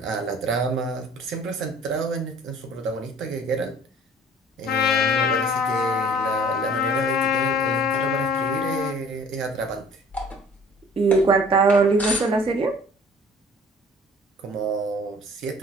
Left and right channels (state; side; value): normal; both; correlation 0.50